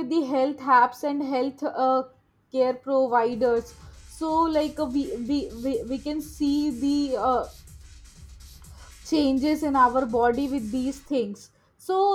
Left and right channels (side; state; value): both; identical; correlation 1.00